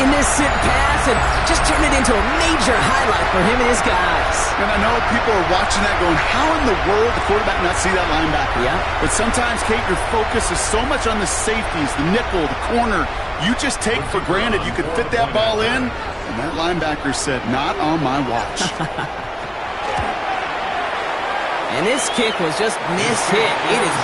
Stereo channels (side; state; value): both; identical; correlation 1.00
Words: innocent pass and just turn it into a major highlight for him and his guys. And I know people are watching that going, how in the world the quarterback not see that linebacker? Yeah. But sometimes, Kate, your focus is so much on the safeties, the nickel, the corner. You just take for granted you could fit that ball in, and that linebacker said, not on my watch. And this kick was just mishit. It is